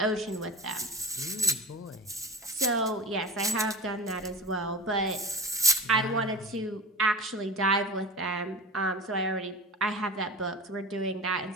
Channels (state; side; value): normal; both; correlation 0.34